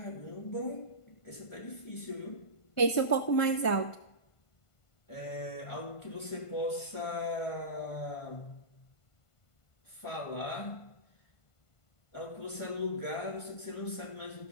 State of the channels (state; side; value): late; right; 1.5 ms